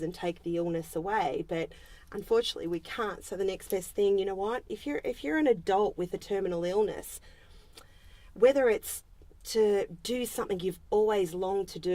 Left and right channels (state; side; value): identical; both; correlation 1.00